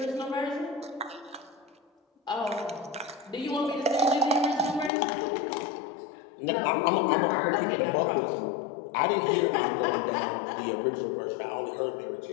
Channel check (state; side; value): drops out; right; at 4.9 s